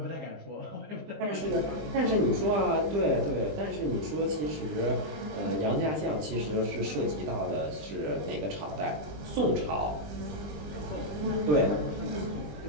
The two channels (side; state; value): left; late; 20 ms